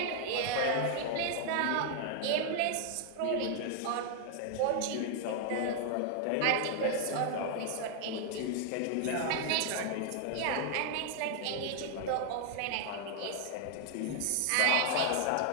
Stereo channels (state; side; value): different; both; correlation 0.00